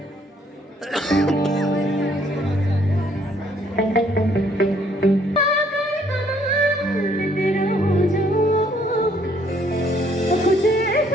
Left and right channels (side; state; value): both; normal; correlation 0.65